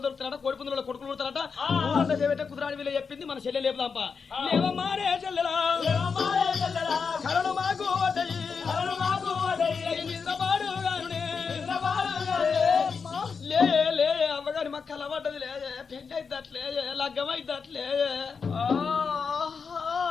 దొరుకుతారట. కోడిపుందుల కొడుకులు పుడతారట. ఊరంతా చేపెట్టే కుదురాడి వీళ్ళు చెప్పింది. మన చెల్లె లేపుదాంపా. లేవమ్మారే చెల్లెలా కరడు మాకు లే అమ్మగారి మాకు కలవడ్డది లేదే. పెళ్లి అయిద్దట్లే లగ్గం అయిద్దట్లే.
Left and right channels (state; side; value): quieter; right; 5.5 dB